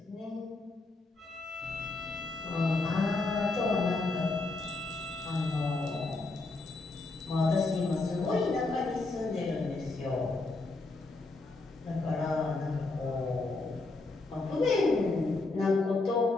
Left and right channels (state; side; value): quieter; right; 3.4 dB